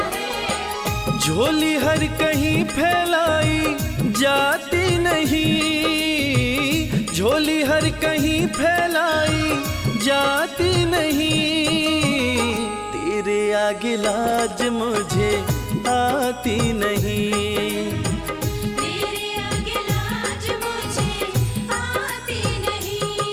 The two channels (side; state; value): both; identical; correlation 1.00